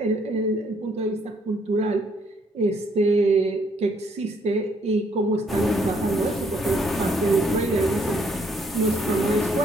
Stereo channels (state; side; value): normal; both; correlation 0.68